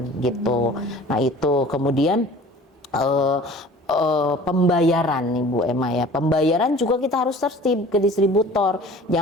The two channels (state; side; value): normal; both; correlation 0.46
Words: gitu. Nah itu kemudian pembayaran nih Bu Emma ya, pembayaran juga kita harus tertib ke distributor.